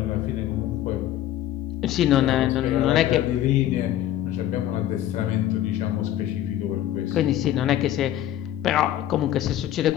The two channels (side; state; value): right; quieter; 12.5 dB